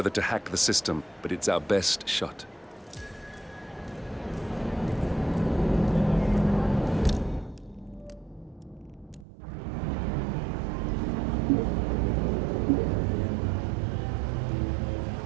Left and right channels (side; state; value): left; drops out; at 9.2 s